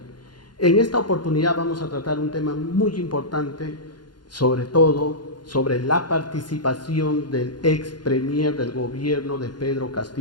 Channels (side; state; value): right; late; 0.71 ms